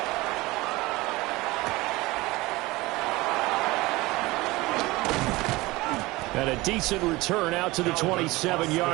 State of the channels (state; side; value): quieter; left; 20.9 dB